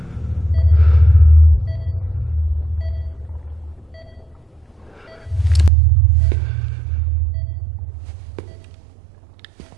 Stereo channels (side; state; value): left; drops out; at 5.7 s